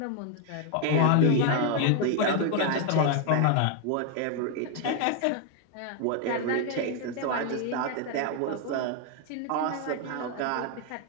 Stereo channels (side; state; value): both; different; correlation 0.01